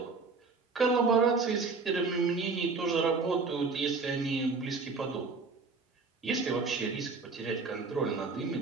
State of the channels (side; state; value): left; quieter; 4.3 dB